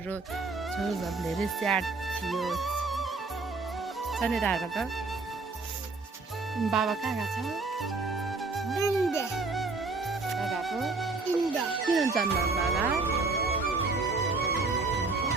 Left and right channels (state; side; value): quieter; left; 3.8 dB